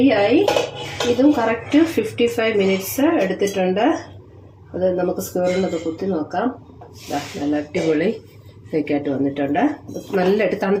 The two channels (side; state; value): both; identical; correlation 1.00